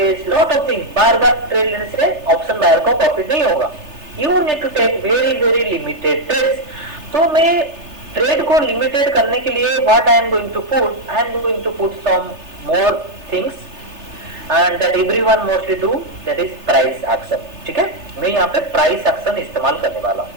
lot of thing. बार बार ट्रेड लेने से ऑप्शन बायर को प्रॉफिट नहीं होगा. You need to take very limited trades. तो मैं ट्रेड को लिमिटेड करने के लिए what I am going to put some more things and that everyone mostly do, that is price action. ठीक है, मैं यहाँ पे price action इस्तेमाल करने वाला हूँ.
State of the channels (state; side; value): late; left; 3.3 ms